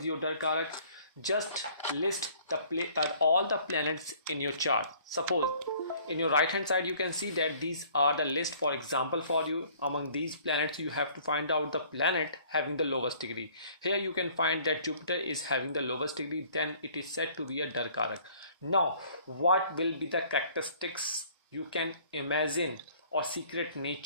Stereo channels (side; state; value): both; inverted; correlation -0.55